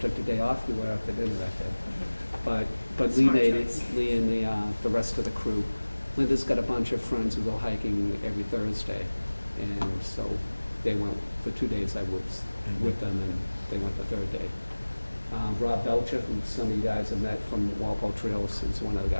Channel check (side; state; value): both; inverted; correlation -1.00